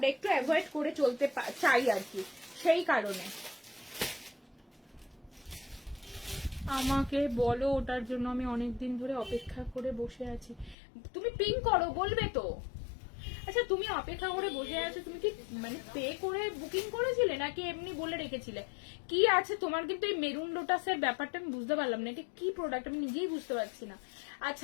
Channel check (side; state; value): right; drops out; at 10.8 s